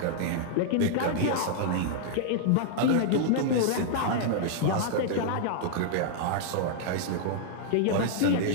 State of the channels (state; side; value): different; both; correlation -0.01